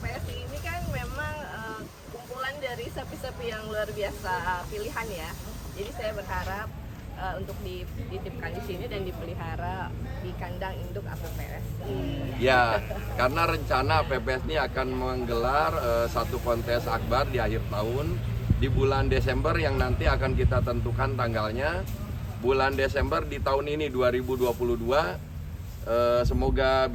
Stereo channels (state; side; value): identical; both; correlation 1.00